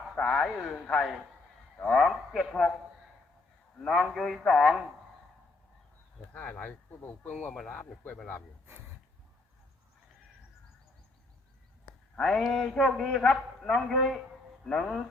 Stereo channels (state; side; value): quieter; right; 3.2 dB